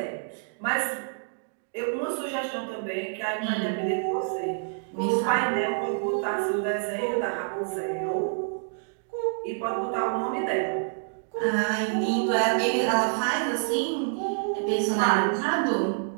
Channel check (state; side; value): silent; left; digital silence